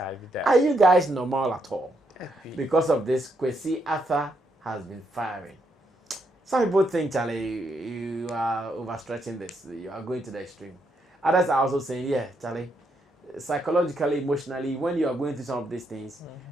Are you guys normal at all? Because of this, Kwesi has been firing. Some people think, Charlie, you are overstretching this. You are going to the extreme. Others are also saying, yeah, Charlie, psychologically, emotionally, when you are going through some of these things,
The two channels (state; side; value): normal; both; correlation 0.78